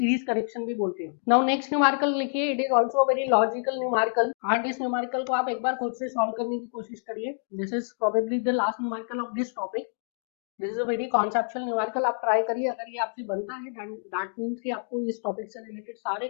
correction भी बोलते हैं। नाउ नेक्स्ट न्यूमेरिकल लिखिए। It is also very logical numerical and इस न्यूमेरिकल को आप एक बार खुद से सॉल्व करने की कोशिश करिए। This is probably the last numerical of this topic. This is a very conceptual numerical, आप ट्राई करिए। अगर ये आपसे बनता है दैट मीन्स कि आपको इस टॉपिक से रिलेटेड सारे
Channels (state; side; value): silent; right; digital silence